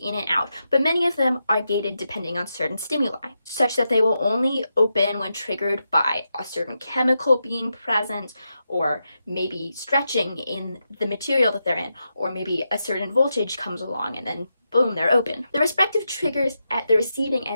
and out, but many of them are gated depending on certain stimuli, such that they will only open when triggered by a certain chemical being present, or maybe stretching in the material that they're in, or maybe a certain voltage comes along and then boom, they're open. The respective triggers at the receiving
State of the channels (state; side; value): inverted; both; correlation -0.86